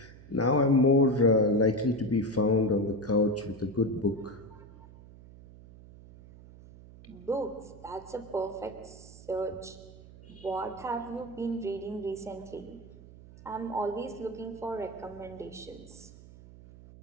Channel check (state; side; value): noise; right; hum, 19 dB below the sound